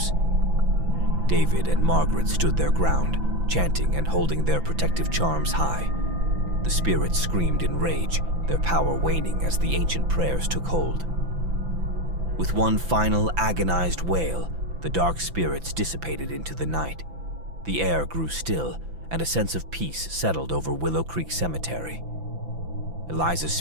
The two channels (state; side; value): late; left; 5.9 ms